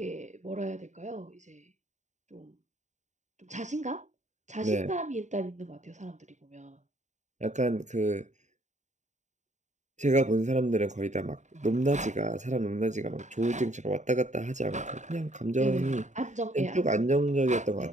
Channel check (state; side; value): late; left; 0.34 ms